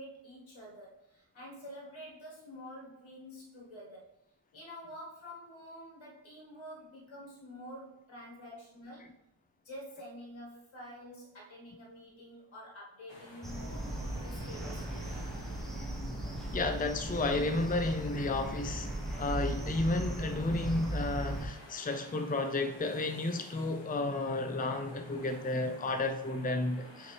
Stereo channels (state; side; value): normal; both; correlation 0.46